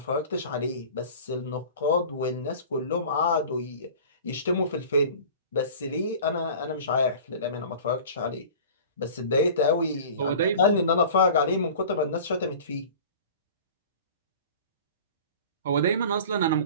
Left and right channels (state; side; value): inverted; both; correlation -0.40